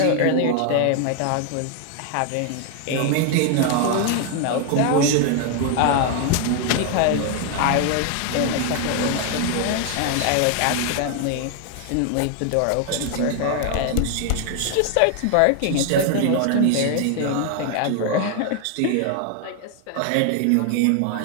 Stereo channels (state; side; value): different; both; correlation 0.00